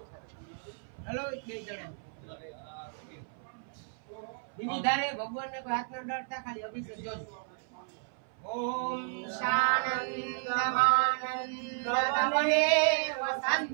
हेलो બે જણા બીજી ધારે ભગવાન ને કોઈ હાથ ન ડરતા ખાલી અભિષેક જોજો। ओम शानन्दमानन्दतमने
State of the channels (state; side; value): silent; left; 56 dB below the other